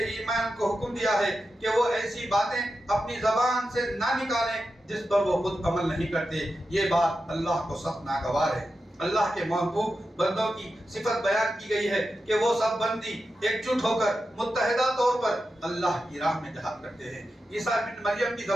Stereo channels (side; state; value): both; normal; correlation 0.90